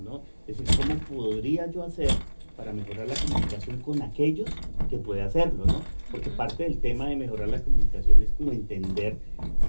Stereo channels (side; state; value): both; inverted; correlation -1.00